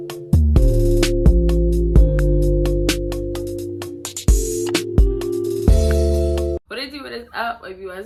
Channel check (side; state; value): both; identical; correlation 1.00